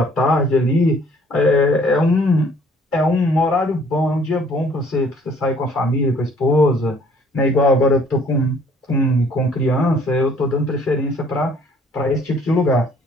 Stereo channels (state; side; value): normal; both; correlation 0.58